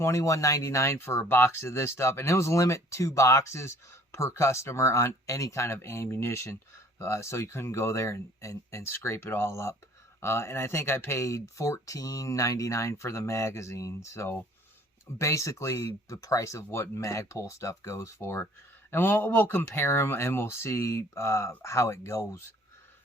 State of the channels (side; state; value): both; normal; correlation 0.54